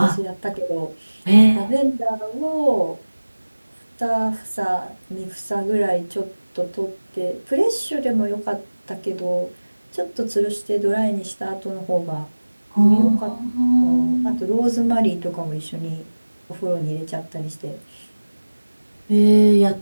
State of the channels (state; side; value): inverted; both; correlation -1.00